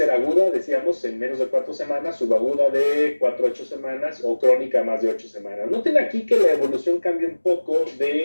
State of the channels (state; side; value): inverted; both; correlation -1.00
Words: aguda, decíamos, en menos de 4 semanas, subaguda de 4 a 8 semanas o crónica más de 8 semanas. Noten aquí que la evolución cambia un poco